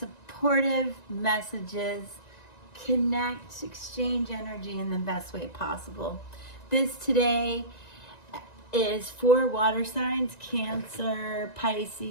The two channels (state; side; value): late; right; 1.9 ms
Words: messages, connect, exchange energy in the best way possible. This today is for water signs: Cancer,